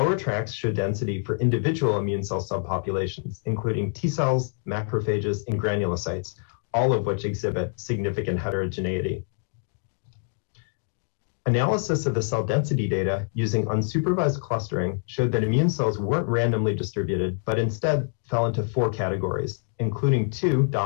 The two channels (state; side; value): silent; right; 61 dB below the other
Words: tracks show density for individual immune cell subpopulations, including T cells, macrophages, and granulocytes, all of which exhibit significant heterogeneity. Analysis of the cell density data using unsupervised clustering showed that immune cells weren't randomly distributed, but instead fell into 4 categories, including 2